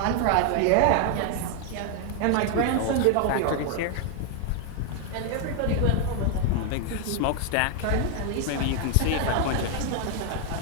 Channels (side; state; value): both; different; correlation 0.00